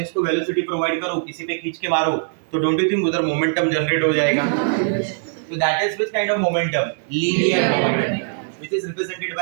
इसको वेलोसिटी प्रोवाइड करूं, किसी पे खींच के मारूं, तो डोंट यू थिंक उधर मोमेंटम जनरेट हो जाएगा? तो that is which kind of momentum, linear momentum, which is represented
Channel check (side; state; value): left; silent; digital silence